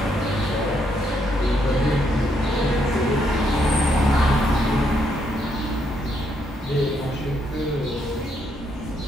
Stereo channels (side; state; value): both; normal; correlation 0.75